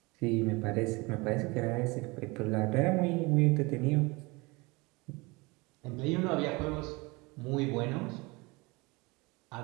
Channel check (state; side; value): quieter; left; 25.2 dB